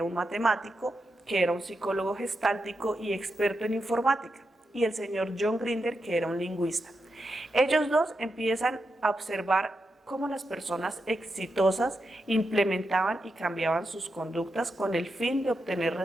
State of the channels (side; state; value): both; normal; correlation 0.86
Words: un matemático, que era un psicólogo gestáltico y experto en informática, y el señor John Grinder, que era un lingüista. Ellos dos empiezan a observar cómo las personas exitosas implementaban y cambiaban sus conductas con el fin de obtener